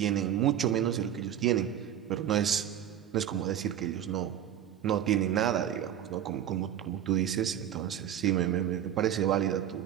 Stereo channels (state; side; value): quieter; left; 10.3 dB